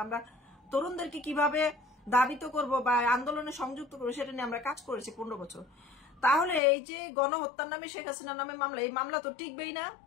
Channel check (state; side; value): drops out; right; at 6.6 s